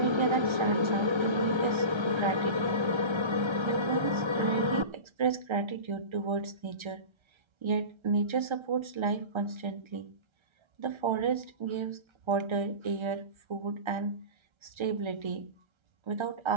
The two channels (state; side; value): late; left; 1.3 ms